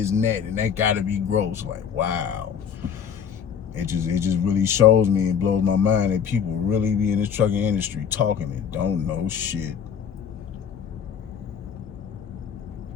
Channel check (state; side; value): quieter; right; 7.7 dB